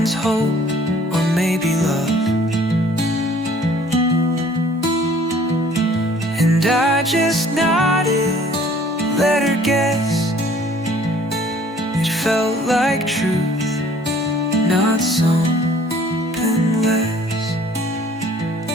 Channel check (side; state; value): both; normal; correlation 0.55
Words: hope or maybe love. And I just nodded, let her guess. It felt like truth, not something less.